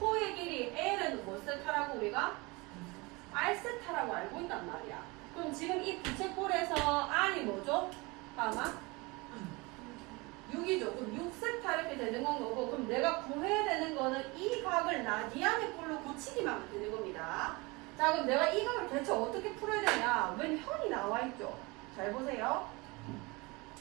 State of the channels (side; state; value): left; quieter; 25.2 dB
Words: 길이 L은 뭐 세타라고 우리가? R세타라고 알고 있단 말이야. 그럼 지금 이 부채꼴에서 R이 뭐죠? 아마 6이죠. 그럼 6세타 이렇게 되는 건 거고, 그럼 내가 구해야 되는 거는 이 각을 라디안의 꼴로 고치기만 하면 되는 겁니다. 자, 그럼 내가 이 각을 대체 어떻게 풀어야 되냐? 웬 현이 나와 있죠. 잘 보세요.